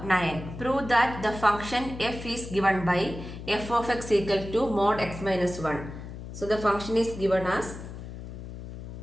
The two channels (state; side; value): noise; left; hum, 11 dB below the sound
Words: 9. Prove that the function f is given by f of x equal to mod x minus 1. So the function is given as